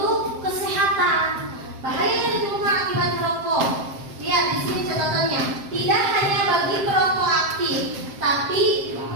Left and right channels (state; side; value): late; left; 7.6 ms